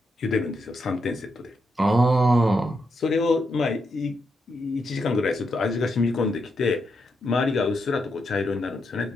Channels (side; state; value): both; normal; correlation 0.82